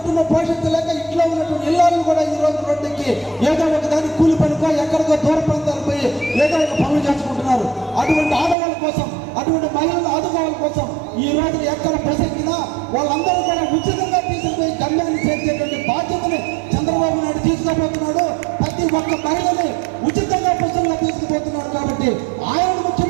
పోషించలేక ఇంట్లో ఉన్నటువంటి ఇళ్ళను కూడా ఈ రోజు రోడ్డుకి ఏదో ఒక దానికి కూలి పనికో ఎక్కడికో దూర ప్రాంతాలకు పోయి ఏదో ఒక పనులు చేసుకుంటున్నారు. అటువంటి ఆడవాళ్ళ కోసం, అటువంటి మహిళలు ఆదుకోవాల కోసం ఈ రోజు ఎక్కడ ప్రసంగినా వాళ్ళందరూ కూడా ఉచితంగా తీసుకుపోయి గమ్యాన్ని చేర్చేటువంటి బాధ్యతని చంద్రబాబు నాయుడు తీసుకోబోతున్నాడు. ప్రతి ఒక్క మహిళని ఉచితంగా బస్సుల్లో తీసుకుపోతున్నాడు. కాబట్టి ఆయన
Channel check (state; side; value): drops out; left; at 8.6 s